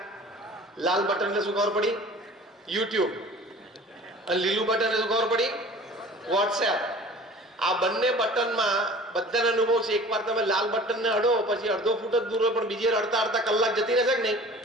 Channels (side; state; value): both; normal; correlation 0.44